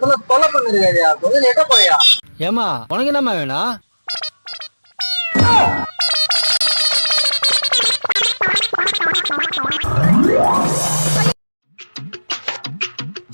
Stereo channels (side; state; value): both; inverted; correlation -1.00